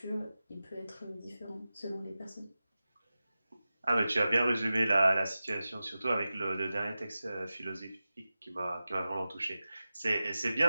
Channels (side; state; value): both; inverted; correlation -0.95